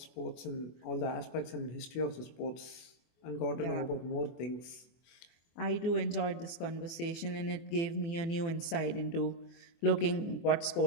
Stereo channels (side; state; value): right; late; 24 ms